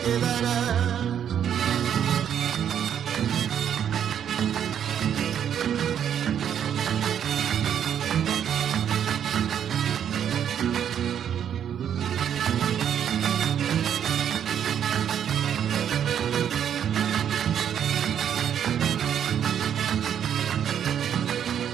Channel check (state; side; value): quieter; left; 9.1 dB